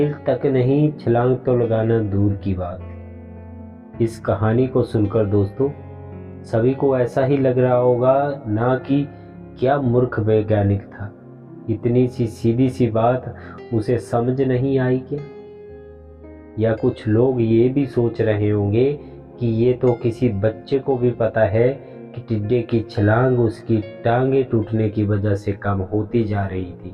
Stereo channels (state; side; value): identical; both; correlation 1.00